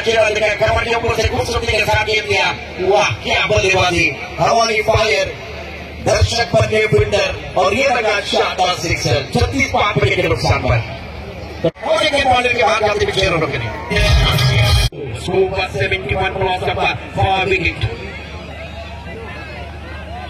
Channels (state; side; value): identical; both; correlation 1.00